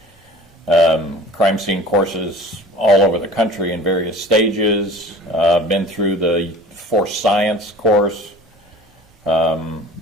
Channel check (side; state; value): both; normal; correlation 0.43